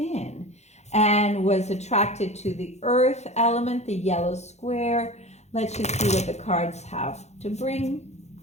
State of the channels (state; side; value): late; right; 0.32 ms